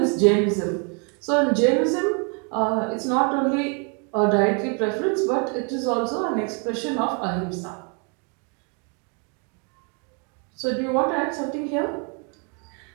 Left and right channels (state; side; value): quieter; left; 36.7 dB